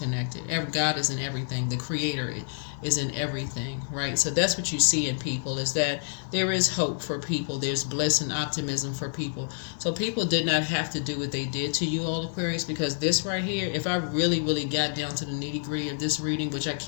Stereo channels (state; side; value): silent; right; digital silence